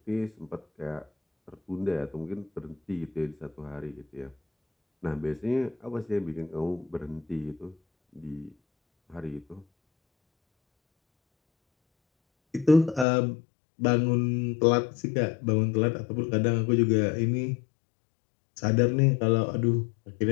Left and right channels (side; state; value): right; drops out; at 13.1 s